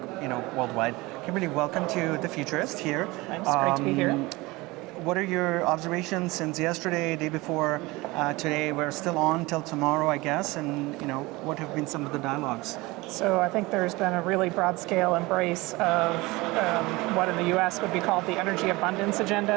worldwide. Kimberly, welcome to the Futurist here. Thanks, great to be here. What are your observations since yesterday, day before, today? We're still on till tomorrow, I guess, and what have been some of the dialogues? So I think there's been a really broad-scale embrace of what in the US would be called the energy abundance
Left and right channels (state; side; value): quieter; left; 22.0 dB